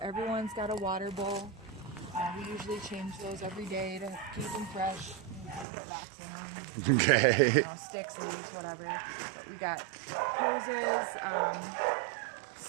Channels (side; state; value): left; drops out; at 5.7 s